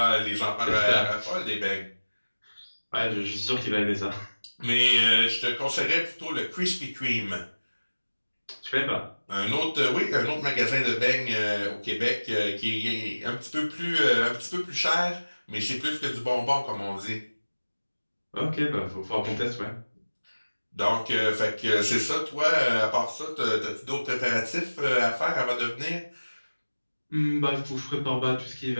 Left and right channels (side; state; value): both; inverted; correlation -1.00